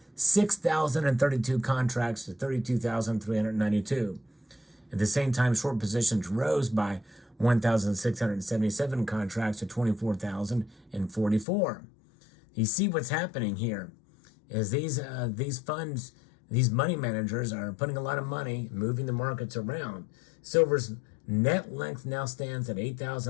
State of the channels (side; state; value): right; drops out; at 11.5 s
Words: 6,032 contracts to 32,392. At the same time, short positions rose by 1,677 contracts to 24,044. You see what's happening here is these funds, these money managers are putting a lot of money, moving the markets around. Silver's net length now stands at